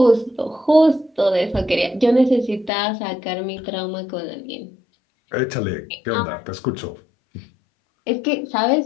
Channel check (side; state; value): right; drops out; at 2.7 s